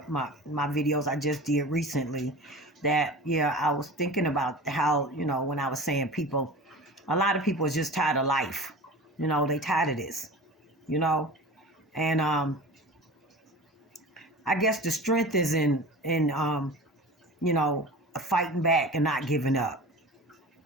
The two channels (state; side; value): normal; both; correlation 0.35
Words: my videos I just did recently, that I was thinking about how, when I was saying a lot of people is just tired of life. They tired of this. And I guess the strength is in fighting back and not giving up.